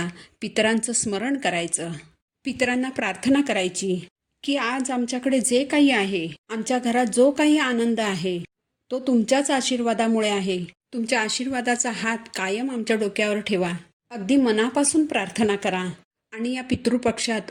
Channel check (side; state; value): both; identical; correlation 1.00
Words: पितरांचं स्मरण करायचं, पितरांना प्रार्थना करायची की आज आमच्याकडे जे काही आहे, आमच्या घरात जो काही आनंद आहे तो तुमच्याच आशीर्वादामुळे आहे. तुमच्या आशीर्वादाचा हात कायम आमच्या डोक्यावर ठेवा. अगदी मनापासून प्रार्थना करा. आणि या पितृपक्षात